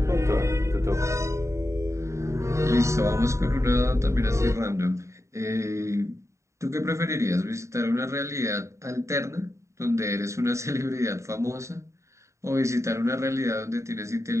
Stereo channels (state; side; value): late; left; 0.14 ms